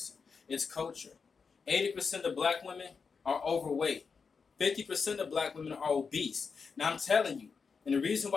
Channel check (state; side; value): quieter; right; 5.4 dB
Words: It's culture. 80% of black women are overweight. 50% of black women are obese. Now I'm telling you, and the reason